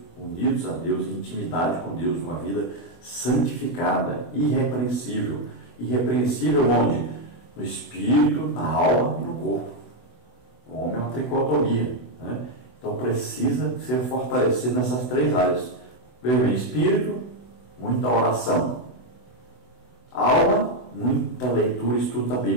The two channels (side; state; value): right; late; 24 ms